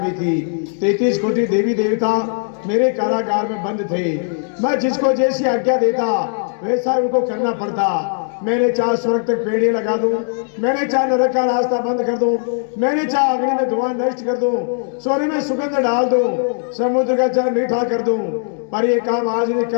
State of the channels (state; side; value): silent; right; 62 dB below the other